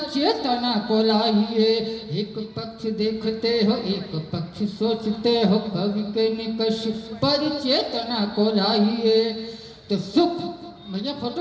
चेतना को लाइए। एक पक्ष देखते हो एक पक्ष सोचते हो, कवि के निकष पर चेतना को लाइए। तो सुख भैया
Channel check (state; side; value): identical; both; correlation 1.00